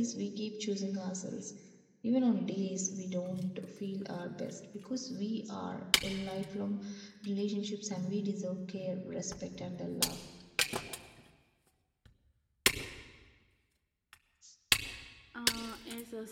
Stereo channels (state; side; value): identical; both; correlation 1.00